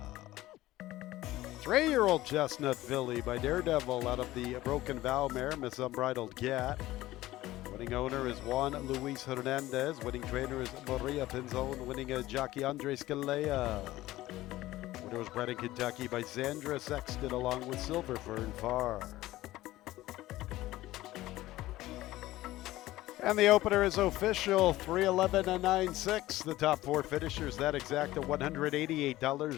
3-year-old Chestnut Filly by Daredevil out of the Broken Vow mare, Miss Unbridled Cat. Winning owner is Juan Luis Hernandez. Winning trainer is Maria Pinzon. Winning jockey Andre Scalea. Winner was bred in Kentucky by Sandra Sexton along with Silver Fern Farr. And the opener is official, 3:11 and 9.6. The top 4 finishers, that exact at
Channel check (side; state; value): right; quieter; 16.5 dB